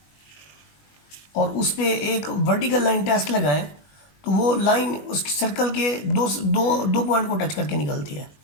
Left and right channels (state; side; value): late; right; 21 ms